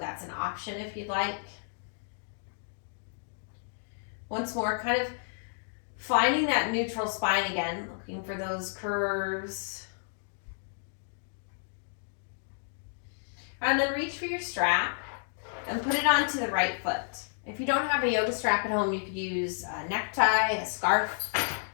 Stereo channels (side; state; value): right; silent; digital silence